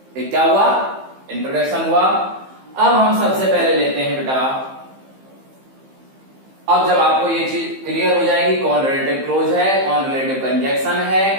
एक क्या हुआ? इंट्रोडक्शन हुआ। अब हम सबसे पहले लेते हैं बेटा, अब जब आपको ये चीज क्लियर हो जाएगी कौन रिलेटिव क्लोज है, कौन रिलेटिव कंजक्शन है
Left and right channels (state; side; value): late; left; 15 ms